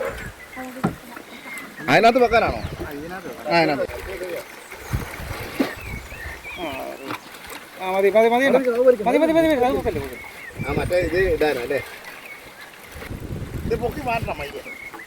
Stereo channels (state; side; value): identical; both; correlation 1.00